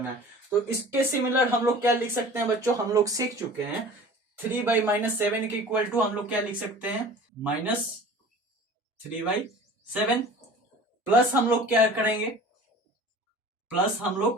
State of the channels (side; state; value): both; normal; correlation 0.43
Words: है। तो इसके सिमिलर हम लोग क्या लिख सकते हैं बच्चों, हम लोग सीख चुके हैं 3/-7 के इक्वल टू हम लोग क्या लिख सकते हैं, -3/7 प्लस हम लोग क्या करेंगे, प्लस हम